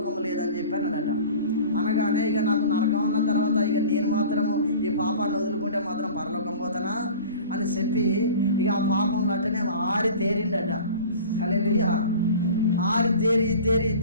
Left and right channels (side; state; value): both; inverted; correlation -0.40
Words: లేదని చెప్పి అన్నాడట. అనగానే ఇక నాకు నరకం అన్న తర్వాత ఇక నేను మాత్రము ఈ పాపాన్ని వదులుకుంటే మాత్రం పరలోకం పోతానా అని చెప్పి ఇక ఆ పాపంలో అట్టనే ఆరి తేరిండట. హల్లెలూయా. ఆరి